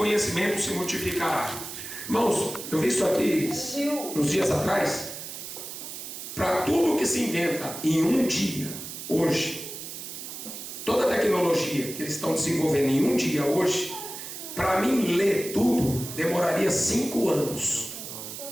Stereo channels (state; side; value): noise; right; hiss, 9 dB below the sound